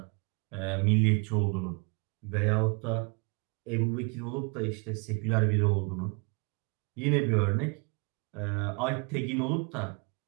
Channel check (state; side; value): quieter; left; 33.2 dB